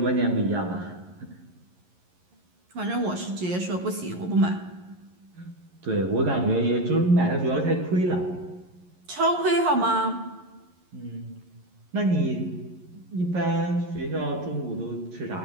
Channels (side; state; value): left; late; 11 ms